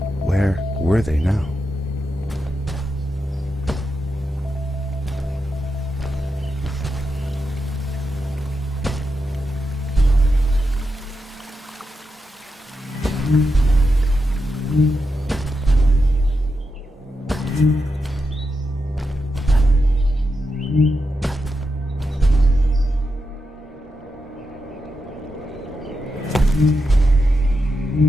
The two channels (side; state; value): both; normal; correlation 0.87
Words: Where were they now?